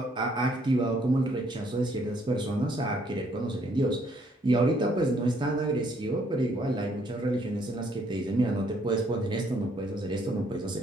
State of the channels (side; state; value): both; normal; correlation 0.67